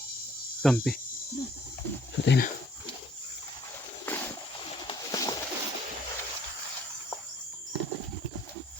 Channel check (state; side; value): normal; both; correlation 0.59